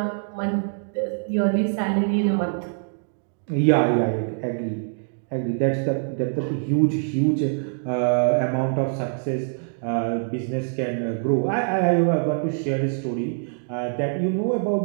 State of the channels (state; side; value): silent; left; digital silence